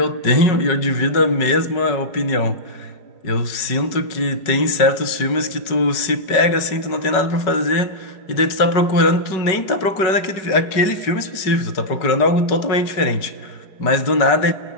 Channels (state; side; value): late; right; 5.3 ms